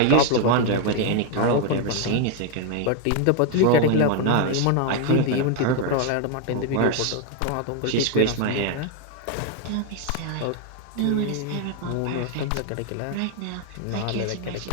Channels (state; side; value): different; both; correlation 0.01